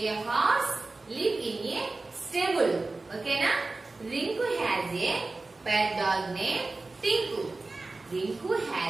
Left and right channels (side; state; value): left; quieter; 3.4 dB